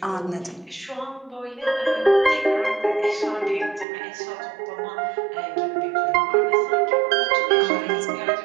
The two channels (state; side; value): drops out; left; at 3.9 s